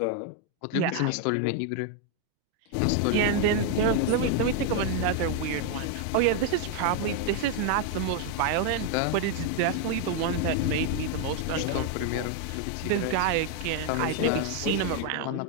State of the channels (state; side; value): different; both; correlation 0.01